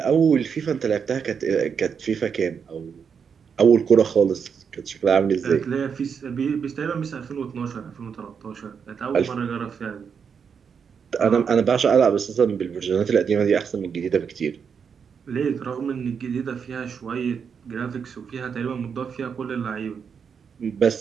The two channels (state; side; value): quieter; left; 6.6 dB